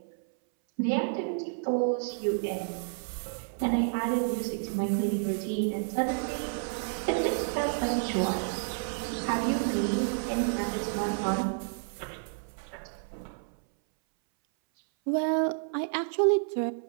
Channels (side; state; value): left; silent; 58 dB below the other